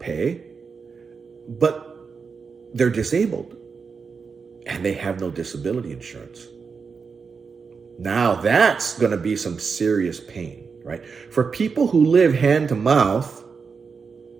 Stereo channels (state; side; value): quieter; left; 5.4 dB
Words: but they're disabled and they have no disability insurance. Now that's going to be some serious pain, right? For people who live hand to mouth,